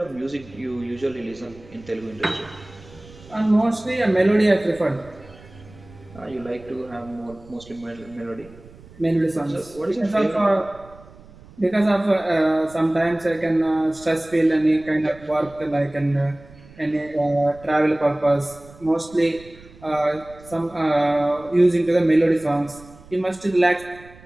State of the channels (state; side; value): noise; right; rumble, 22 dB below the sound